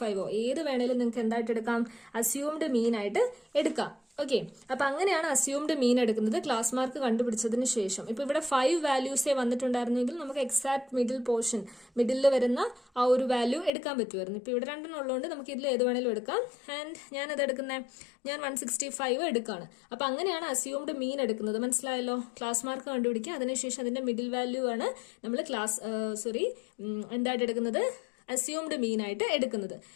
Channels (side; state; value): right; drops out; at 13.7 s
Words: ഏത് വേണേലും നിങ്ങൾക്ക് എന്തായിട്ട് എടുക്കാം? അസ്യൂംഡ് മീൻ ആയിട്ട് എടുക്കാം. ഓക്കെ, അപ്പൊ അങ്ങനെയാണ് അസ്യൂംഡ് മീൻ എടുക്കുന്നത് ക്ലാസ് മാർക്ക് കണ്ടുപിടിച്ചതിന് ശേഷം. ഇപ്പൊ ഇവിടെ 5 വാല്യൂസേ വന്നിട്ടുണ്ടായിരുന്നെങ്കിൽ നമുക്ക് എക്സാക്ട് മിഡിൽ പോർഷൻ, മിഡിലിൽ വരുന്ന ആ ഒരു വാല്യൂ എടുക്കാൻ പറ്റുമായിരുന്നു. ഇപ്പൊ ഇവിടെ 2 ഉള്ളതുകൊണ്ട് നമുക്ക് ഇതിൽ ഏത് വേണേലും എടുക്കാം. ആൻഡ് ഞാൻ 165 എടുക്കാണ്. അപ്പൊ അങ്ങനെയാണ് അസ്യൂംഡ് മീൻ എടുക്കുന്നത്. മനസ്സിലായല്ലോ? ക്ലാസ് മാർക്ക് കണ്ടുപിടിക്കുക, അതിനുശേഷം അതിന്റെ മിഡിൽ വാല്യൂ ആണ് നമ്മൾ എന്തായിട്ട് എടുക്കുന്നത്? അസ്യൂംഡ് മീൻ ആയിട്ട് എടുക്കുന്നത്.